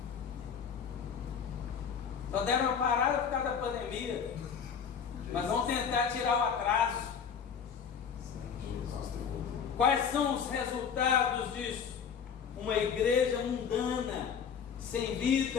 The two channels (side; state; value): right; quieter; 7.0 dB